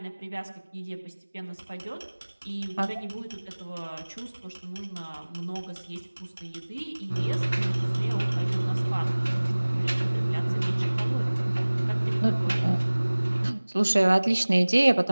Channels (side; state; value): both; inverted; correlation -1.00